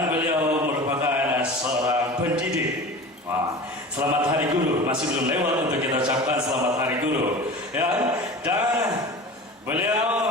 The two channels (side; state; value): both; normal; correlation 0.35